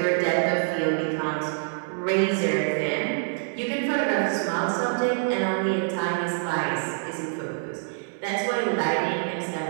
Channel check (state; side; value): silent; left; digital silence